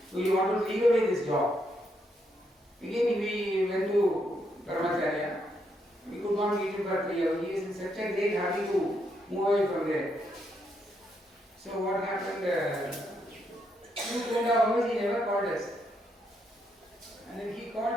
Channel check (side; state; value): both; normal; correlation 0.78